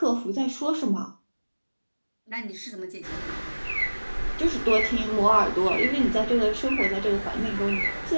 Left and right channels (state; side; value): inverted; both; correlation -1.00